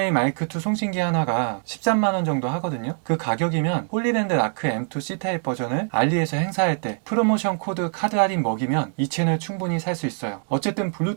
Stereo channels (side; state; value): left; silent; 57 dB below the other